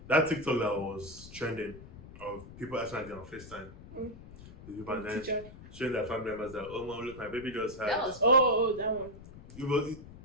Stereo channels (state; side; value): noise; left; rumble, 17 dB below the sound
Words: That TikTok that was trending of people acting on FaceTime. The people and then showing their family members that, oh mom, look, my baby just had. That was that one. It